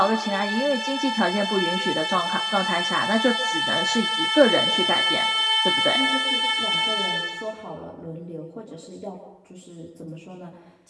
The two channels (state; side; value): identical; both; correlation 1.00